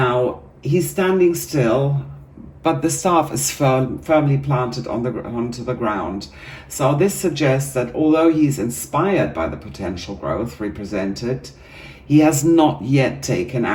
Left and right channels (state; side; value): identical; both; correlation 1.00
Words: he's standing still, but the staff is firmly planted onto the ground. So this suggests that although he's inspired by the potential growth represented, he has not yet taken